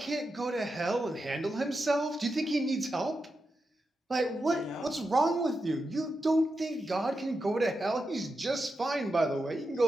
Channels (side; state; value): both; normal; correlation 0.88